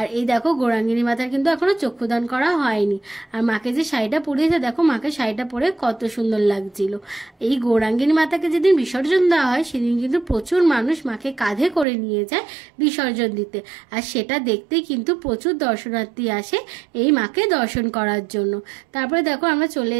এই দেখো, গৌরাঙ্গিনী মাতার কিন্তু এখনো চক্ষুদান করা হয়নি। আর মাকে যে শাড়িটা পরিয়েছে, দেখো মাকে শাড়িটা পরে কত সুন্দর লাগছিল। এই গৌরাঙ্গিনী মাতাকে যেদিন বিসর্জন দেওয়া হয়, সেদিন কিন্তু প্রচুর মানুষ মাকে কাঁধে করে নিয়ে যায় বিসর্জন দিতে। আর সেটা দেখতে কিন্তু প্রচুর দর্শনার্থী আসে এই মাকে দর্শন করার জন্য। তারপরে দেখো, আমরা চলে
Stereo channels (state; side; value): drops out; left; at 11.9 s